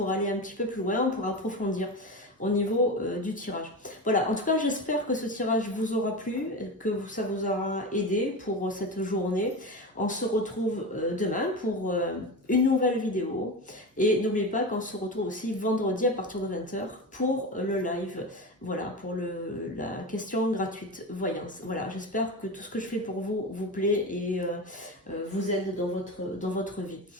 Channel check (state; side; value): normal; both; correlation 0.24